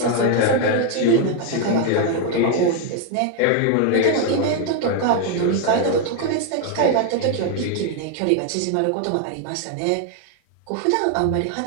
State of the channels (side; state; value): both; different; correlation 0.00